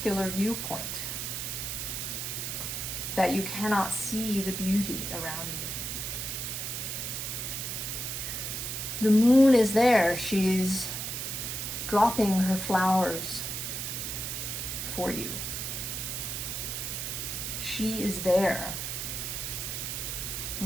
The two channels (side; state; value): right; noise; hiss, 4 dB below the sound